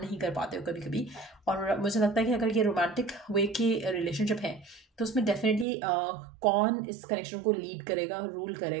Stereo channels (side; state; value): left; drops out; at 5.7 s